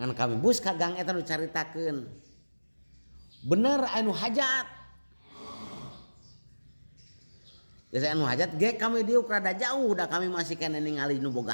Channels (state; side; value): inverted; both; correlation -1.00